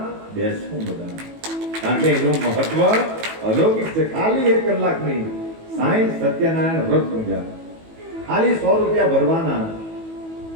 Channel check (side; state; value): left; late; 18 ms